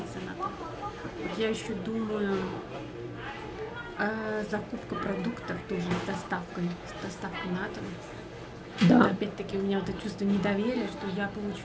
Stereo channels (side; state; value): both; identical; correlation 1.00